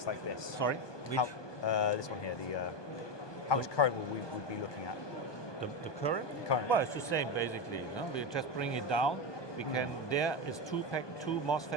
like this? Sorry, which? This one here. How much current would we be looking at? The current? Current. Well, it's the same basically. We just bring it down. We can. There is two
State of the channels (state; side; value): late; right; 1.2 ms